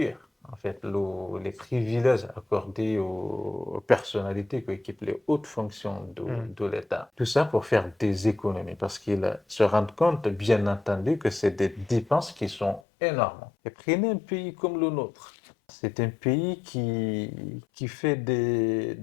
en fait les privilèges accordés aux personnalités qui occupent les hautes fonctions de l'État. Tout ça pour faire des économies parce qu'ils se rendent compte, bien entendu, que c'est des dépenses qui sont énormes. Et prenez un pays comme le nôtre. C'est un pays qui fait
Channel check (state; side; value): drops out; right; at 12.8 s